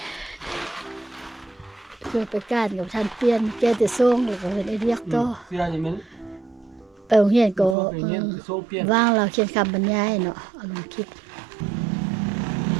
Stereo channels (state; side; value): drops out; left; at 7.8 s